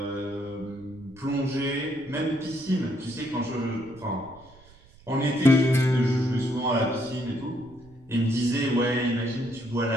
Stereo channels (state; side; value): noise; right; rumble, 26 dB below the sound